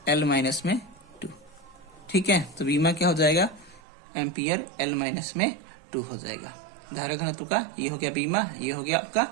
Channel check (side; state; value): left; drops out; at 3.8 s